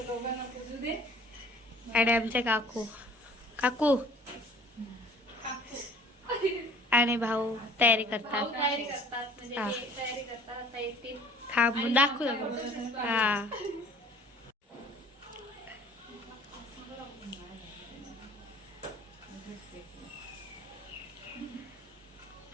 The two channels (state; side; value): normal; both; correlation 0.50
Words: दोघांना पुजू दे. आणि आमचे काकू काकू आणि भाऊ तयारी करतात. तयारी करतात म्हणजे हा. ते तयारी करतात आता येतील. थांबून दाखवू दाखवू. हा